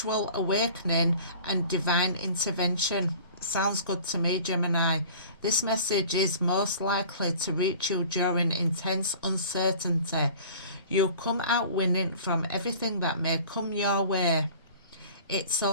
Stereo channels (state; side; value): inverted; both; correlation -0.44